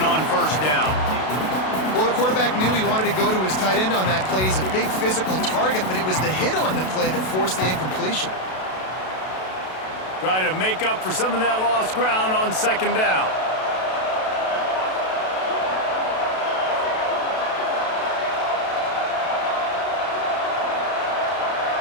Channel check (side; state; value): right; late; 32 ms